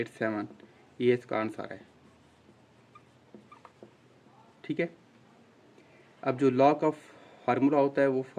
ये इसका आंसर है। ठीक है, अब जो लॉग का फार्मूला होता है वो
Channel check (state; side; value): identical; both; correlation 1.00